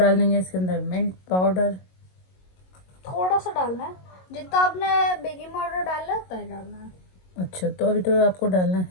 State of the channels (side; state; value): right; late; 22 ms